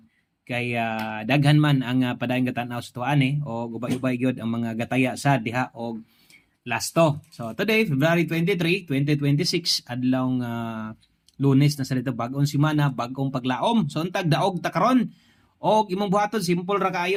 Kay daghan man ang padayong gatanaw sa tuan o ubay-ubay gyud ang mga gataya sa diha og lasto. So today, February 23, 2026, adlawng Lunes na sa dito, bagong semana, bagong paglaom. So untag daog ta karon. Og imong buhaton simple ra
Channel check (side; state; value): both; identical; correlation 1.00